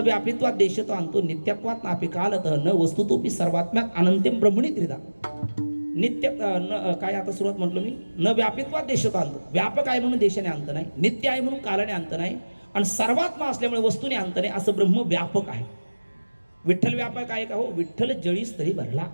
व्यापित्वात देशतो आणतो, नित्यत्वात नापी कालत न वस्तुतोपी सर्वात्म्यात अनंतम ब्रह्मणी त्रिधा. नित्य काय आता सुरुवात म्हटलं मी, न व्यापित्वात देशतो आणतो, व्यापक आहे म्हणून देशाने अंत नाही, नित्य आहे म्हणून कालाने अंत नाही, आणि सर्वात्मा असल्यामुळे वस्तूने अंत नाही, असं ब्रह्म व्यापक आहे. विठ्ठल व्यापक आहे का? हो. विठ्ठल जळीस तरी भरला,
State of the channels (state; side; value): inverted; both; correlation -1.00